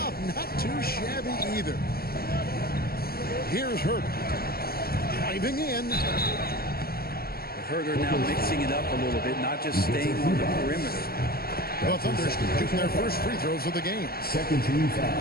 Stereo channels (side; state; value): right; late; 0.44 ms